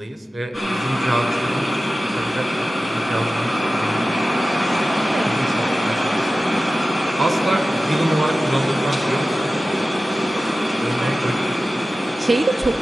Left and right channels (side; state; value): both; normal; correlation 0.95